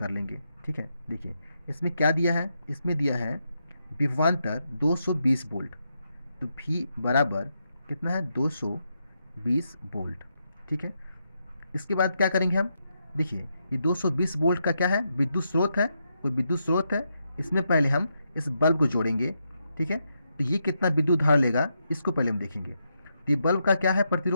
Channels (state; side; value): inverted; both; correlation -0.82